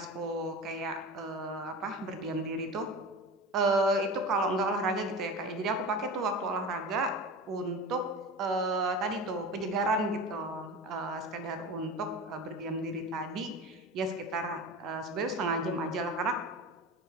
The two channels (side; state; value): both; normal; correlation 0.30